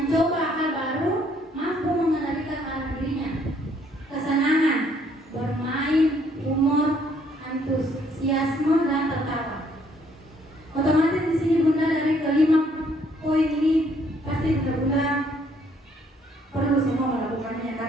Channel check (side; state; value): both; normal; correlation 0.66